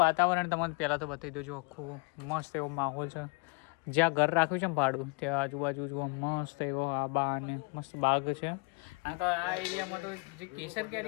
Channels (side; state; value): right; quieter; 31.4 dB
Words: વાતાવરણ તમને પહેલાં તો બતાવી દઉં. આખું મસ્ત એવો માહોલ છે. જ્યાં ઘર રાખ્યું છે ને ભાડું ત્યાં આજુબાજુ જુઓ મસ્ત એવો આબા અને મસ્ત બાગ છે. અને તો આ એરિયામાં તો જે કેસર